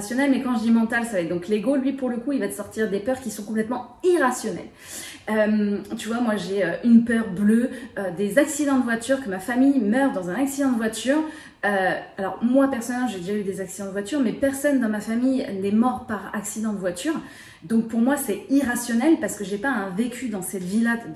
mais quand je dis mental, ça va être donc l'ego. Lui, pour le coup, il va te sortir des peurs qui sont complètement irrationnelles. Tu vois, moi j'ai une peur bleue des accidents de voiture, que ma famille meure dans un accident de voiture. Alors moi personnellement j'ai déjà eu des accidents de voiture, mais personne dans ma famille n'est mort par accident de voiture. Donc pour moi c'est irrationnel parce que j'ai pas un vécu dans cette vie-là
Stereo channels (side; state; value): both; identical; correlation 1.00